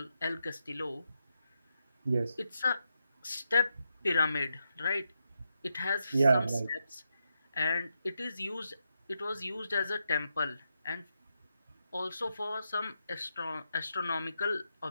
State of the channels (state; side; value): inverted; both; correlation -0.85